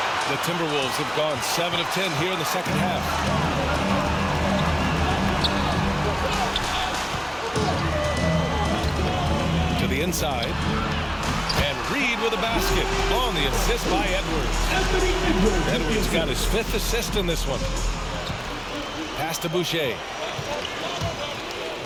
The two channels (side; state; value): both; identical; correlation 1.00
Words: The Timberwolves have gone 7 of 10 here in the second half. To the inside. And Reed with a basket on the assist by Edwards. Edwards got his 5th assist in this one. Pass to Boucher.